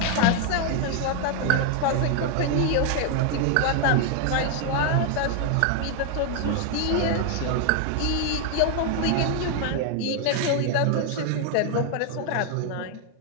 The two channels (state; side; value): different; both; correlation 0.01